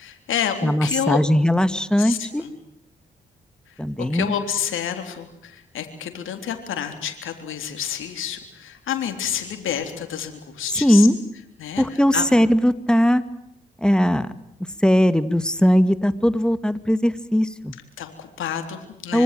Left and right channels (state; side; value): normal; both; correlation 0.85